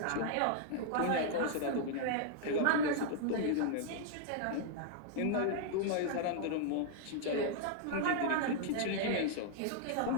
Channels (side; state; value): both; different; correlation -0.01